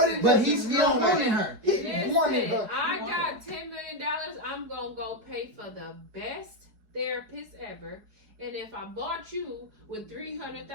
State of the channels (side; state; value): left; late; 4.7 ms